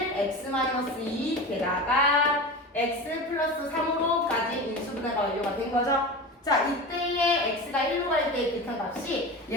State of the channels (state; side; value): normal; both; correlation 0.29